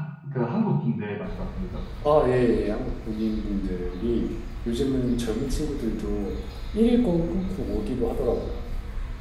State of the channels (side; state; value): both; identical; correlation 1.00